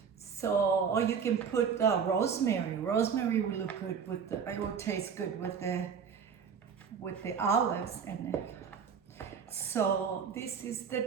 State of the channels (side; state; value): left; quieter; 6.7 dB